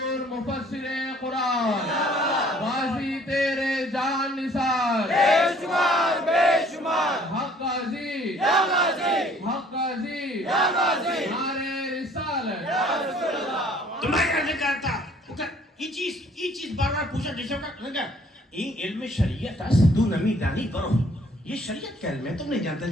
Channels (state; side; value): normal; both; correlation 0.57